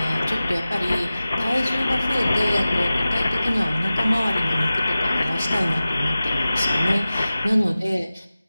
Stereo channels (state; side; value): inverted; both; correlation -0.96